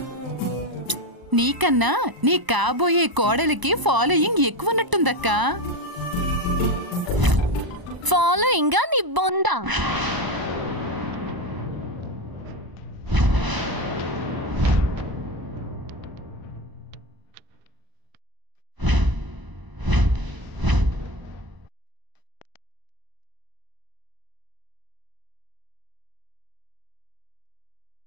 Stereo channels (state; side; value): late; left; 1.0 ms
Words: నీకన్నా నీ కాబోయే కోడలికి ఫాలోయింగ్ ఎక్కువ ఉన్నట్టుందక్క. ఫాలోయింగా నీ బొందా?